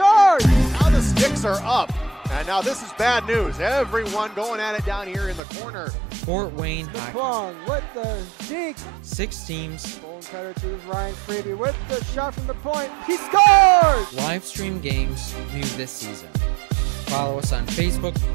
Now the sticks are up. And now this is bad news. Everyone going at it down here in the corner. Fort Wayne Hockey with the deke. 6 teams. Bone cutter to Ryan Freeby with the shot from the point. He scores! Live stream games new this season. Follow us on Facebook,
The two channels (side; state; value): left; drops out; at 5.4 s